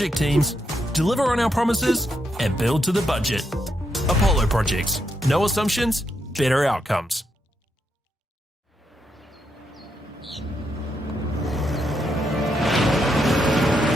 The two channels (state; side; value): normal; both; correlation 0.81